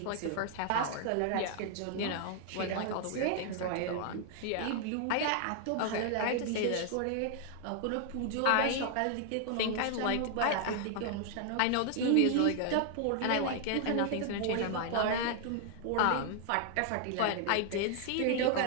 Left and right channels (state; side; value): different; both; correlation 0.00